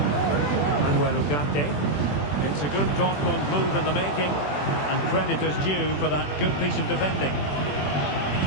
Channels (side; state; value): right; late; 21 ms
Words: Manuel Ugarte. It's a good Dortmund move in the making, and credit is due for that good piece of defending.